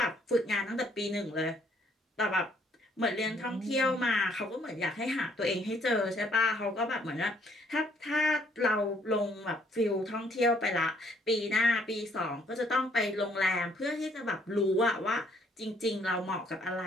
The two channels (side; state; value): both; normal; correlation 0.65